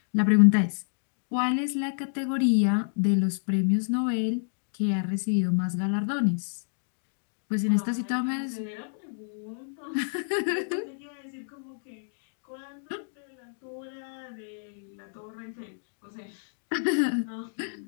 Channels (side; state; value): right; silent; digital silence